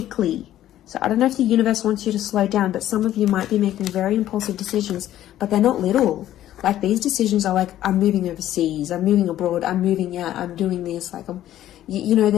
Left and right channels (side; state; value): right; quieter; 12.8 dB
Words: So I don't know if the universe wants you to slow down, but some of you might be making very impulsive decisions, but they're not little. Like, these decisions are like, I'm moving overseas, I'm moving abroad, I'm moving out, I'm doing this. Like, you know,